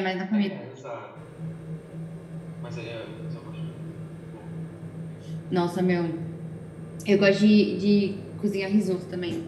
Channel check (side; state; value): both; identical; correlation 1.00